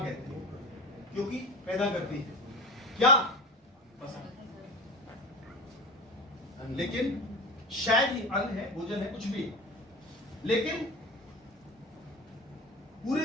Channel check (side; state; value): both; normal; correlation 0.31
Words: हैं, क्योंकि पैदा करती है क्या? फसल। लेकिन शायद ही अन्न है, भोजन है, कुछ भी है, लेकिन